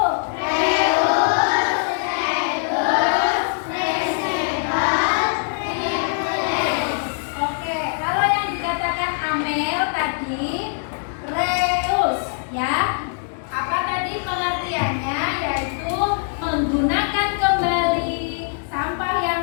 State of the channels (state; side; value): silent; right; digital silence